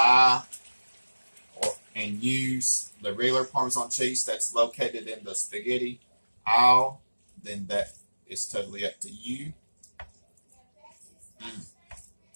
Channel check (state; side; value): inverted; both; correlation -1.00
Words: and use the regular Parmesan cheese that's located in the spaghetti aisle, then that is totally up to you.